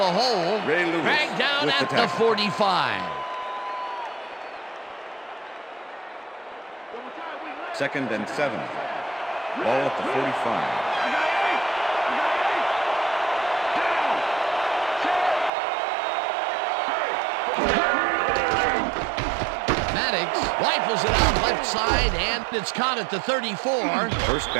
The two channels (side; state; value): left; drops out; at 15.5 s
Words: hole. Dragged down at the 45. Second and 7. Ball at the 45. Maddox rifles it out left side, and it's caught at the 34. First